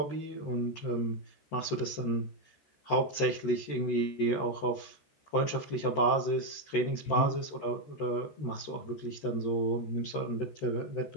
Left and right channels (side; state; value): right; late; 13 ms